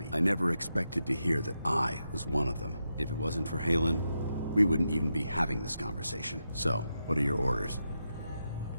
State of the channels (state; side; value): inverted; both; correlation -0.86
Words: I never expected to hear that I was one of them. If it wasn't for Halen, we wouldn't even be having this conversation. So, what are your orders?